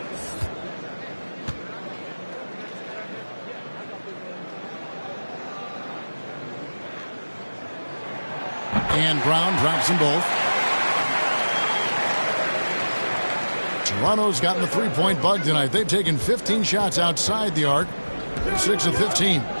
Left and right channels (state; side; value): inverted; both; correlation -1.00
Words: And Brown drops them both. Toronto's gotten the three-point bug tonight. They've taken 15 shots outside the arc. They're 6 of 15.